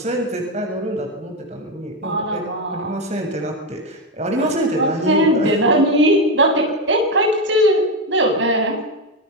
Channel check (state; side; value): normal; both; correlation 0.10